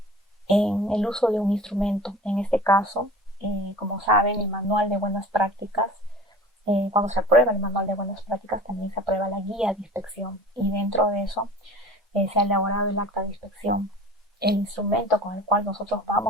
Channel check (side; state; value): both; normal; correlation 0.40